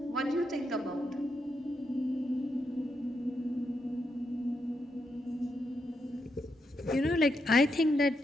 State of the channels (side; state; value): both; normal; correlation 0.83